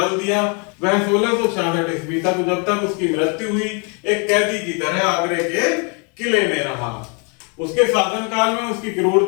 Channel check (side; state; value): right; quieter; 35.8 dB